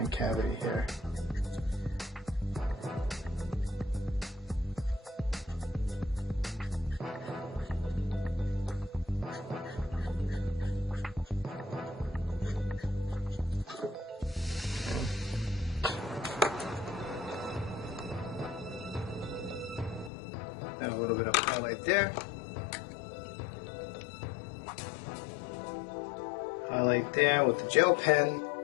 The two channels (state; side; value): drops out; right; at 20.1 s